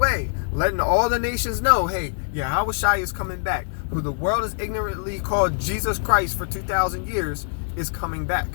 letting all the nations know, hey, Yahushua is coming back, who the world has ignorantly called Jesus Christ for 2,000 years, is coming back.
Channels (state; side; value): silent; right; 61 dB below the other